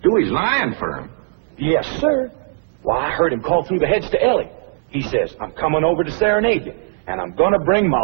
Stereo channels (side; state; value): left; silent; 67 dB below the other